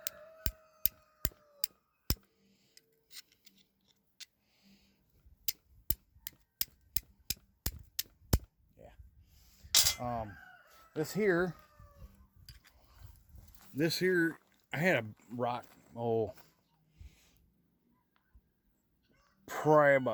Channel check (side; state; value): both; identical; correlation 1.00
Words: Yeah. This here, I had a rock, probably